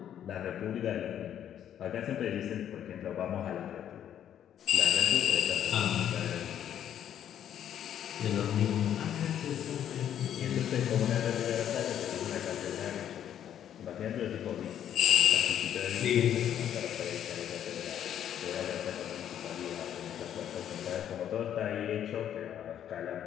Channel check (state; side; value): quieter; right; 10.1 dB